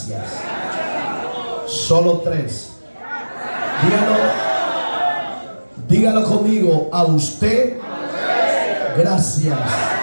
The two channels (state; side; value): inverted; both; correlation -1.00